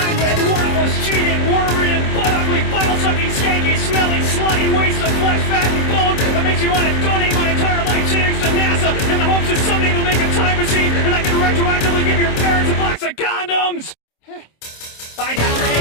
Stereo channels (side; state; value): right; late; 26 ms